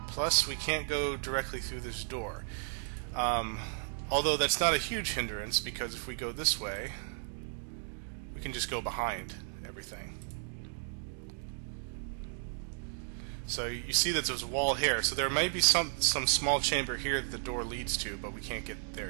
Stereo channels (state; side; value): silent; left; 55 dB below the other